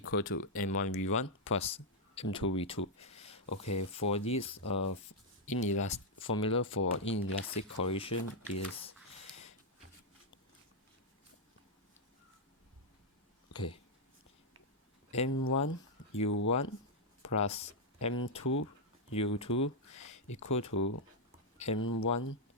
to M1 V1 plus M2 V2. Okay, for this formula for inelastic correlation is okay. M1 U1 plus M2 U2 equal to M1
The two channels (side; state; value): both; normal; correlation -0.03